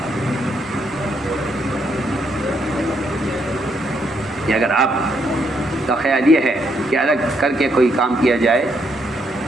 کہ اگر آپ کا خیال یہ ہے کہ الگ کر کے کوئی کام کیا جائے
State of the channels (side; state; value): both; normal; correlation 0.75